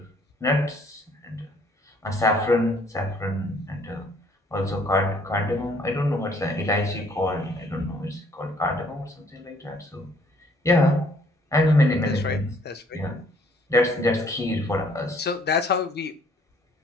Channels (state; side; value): normal; both; correlation 0.61